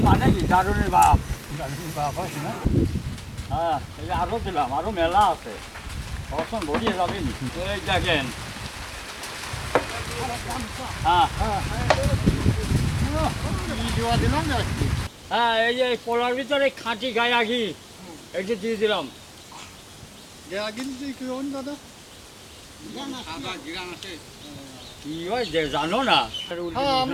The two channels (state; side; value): identical; both; correlation 1.00